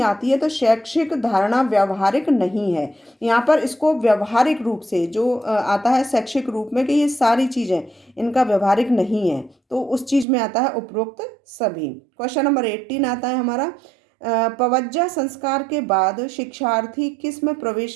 आती है। तो शैक्षिक धारणा व्यावहारिक नहीं है, यहाँ पर इसको व्यवहारिक रूप से जो आता है शैक्षिक रूप में कि ये सारी चीज़ें इनका व्यवहारिक नहीं है, तो उस चीज़ में आता है उपरोक्त सभी। क्वेश्चन नंबर 18 आता है हमारा, पवज्जा संस्कार के बाद शिक्षार्थी किस में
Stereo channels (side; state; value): left; drops out; at 10.2 s